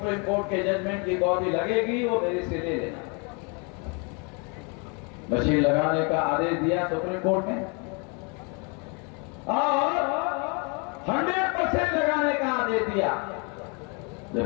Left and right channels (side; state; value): right; quieter; 33.4 dB